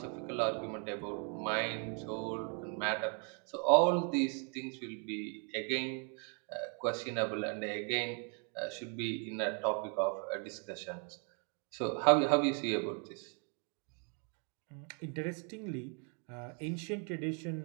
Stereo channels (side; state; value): left; quieter; 39.0 dB